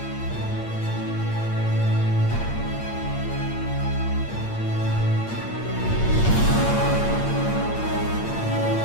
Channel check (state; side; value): late; right; 8.7 ms